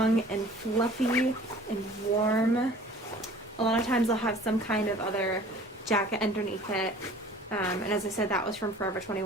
and fluffy and warm. A lot of times I'll have some kind of other jacket underneath it. And as I said, that was from Forever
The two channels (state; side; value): normal; both; correlation 0.48